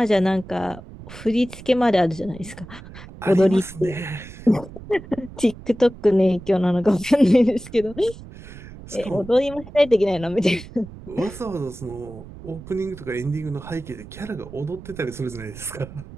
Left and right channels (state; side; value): noise; right; rumble, 16 dB below the sound